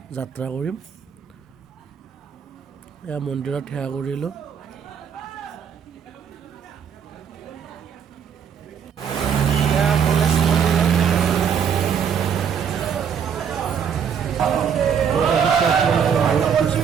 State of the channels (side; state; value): left; quieter; 7.5 dB